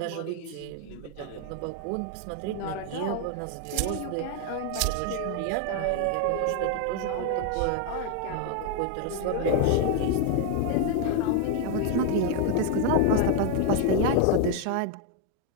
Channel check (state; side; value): different; both; correlation 0.01